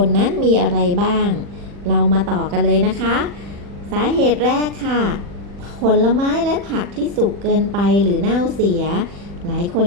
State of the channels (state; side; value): late; left; 40 ms